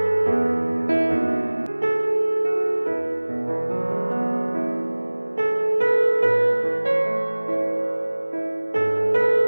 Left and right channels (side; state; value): both; inverted; correlation -1.00